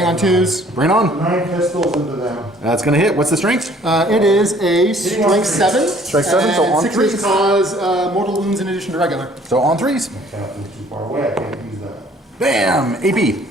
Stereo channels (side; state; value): both; normal; correlation 0.57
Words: on 2s. Bring it on. 9 pistols into them. That's gonna hit. What's the strength? It is a strength 7. Strength 7, so on 6 3s. inches cause mortal wounds in addition to regular. So on 3s. Captain's too far away, I can't use that. Bam! AP.